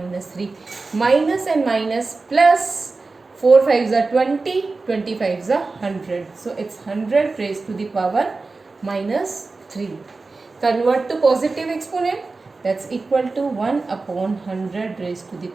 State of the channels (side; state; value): left; quieter; 3.8 dB